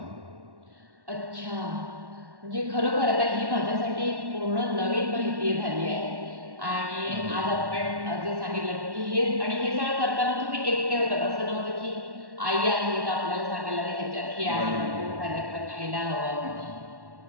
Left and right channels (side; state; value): left; late; 1.1 ms